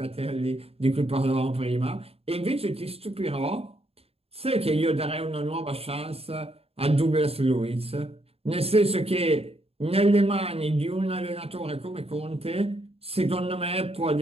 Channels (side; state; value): left; late; 0.29 ms